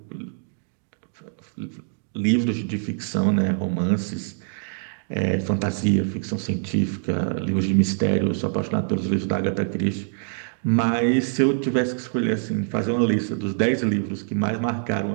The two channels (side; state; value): left; silent; digital silence